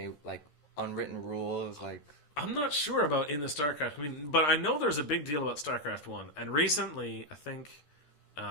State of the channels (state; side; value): late; right; 13 ms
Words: like unwritten rules, like... I'm not sure about in the StarCraft. But I know there's a big deal about StarCraft 1. And recently, I think...